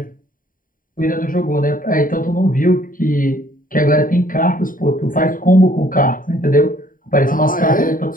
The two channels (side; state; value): right; late; 0.40 ms